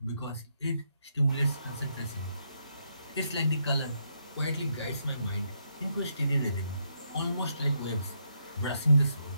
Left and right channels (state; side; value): inverted; both; correlation -0.78